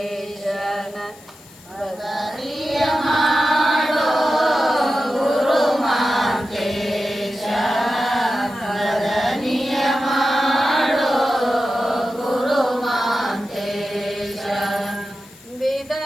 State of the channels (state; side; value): noise; left; hiss, 23 dB below the sound